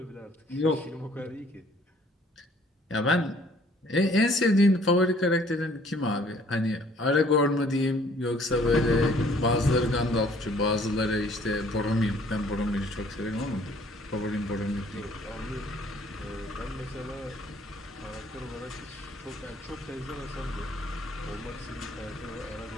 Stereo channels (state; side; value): normal; both; correlation 0.59